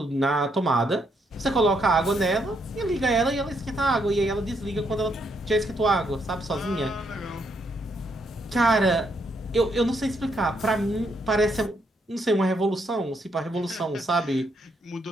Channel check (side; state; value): both; normal; correlation 0.75